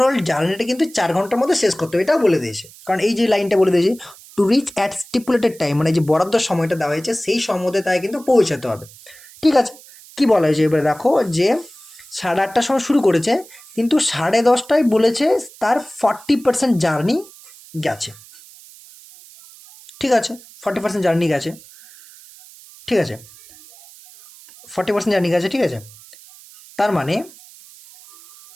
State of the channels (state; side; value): noise; right; hiss, 22 dB below the sound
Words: জার্নিটা কিন্তু 4 ঘন্টার মধ্যে শেষ করতে হবে, এটাও বলে দিয়েছে, কারণ এই যে লাইনটা বলে দিয়েছে to reach at stipulated time, মানে যে বরাদ্দ সময়টা দেওয়া হয়েছে সেই সময় মধ্যে তাই কিন্তু পৌঁছাতে হবে, ঠিক আছে। কি বলা হয়েছে এবারে দেখো, যে 8:30টার সময় শুরু করেছে, কিন্তু 10:30টায় বলেছে তার 40% জার্নি গেছে, ঠিক আছে, 40% জার্নি গেছে, ঠিক আছে, 40% জার্নি গেছে, ঠিক আছে। তার মানে